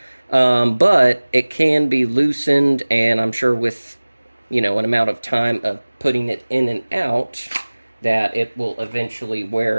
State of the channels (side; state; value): both; inverted; correlation -1.00